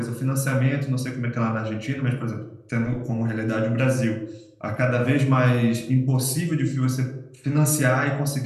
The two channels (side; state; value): both; identical; correlation 1.00